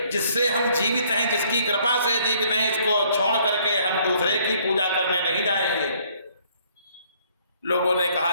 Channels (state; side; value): inverted; both; correlation -0.63